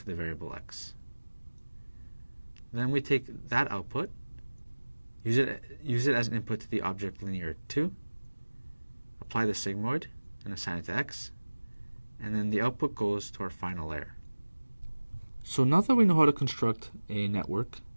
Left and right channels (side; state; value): both; inverted; correlation -1.00